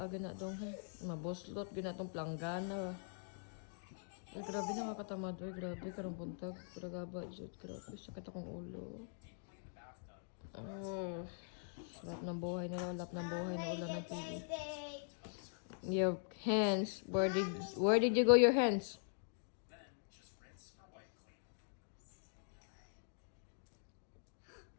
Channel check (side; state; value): right; silent; digital silence